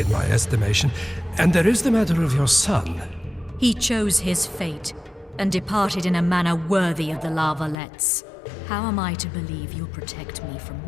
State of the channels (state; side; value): drops out; right; at 7.8 s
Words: my estimation. And there is the matter of your son. He chose his fate and departed in a manner worthy of the Lavalettes. How am I to believe you'll protect me from